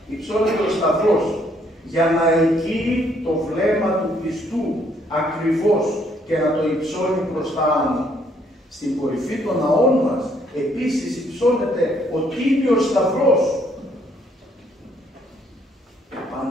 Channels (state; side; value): normal; both; correlation 0.68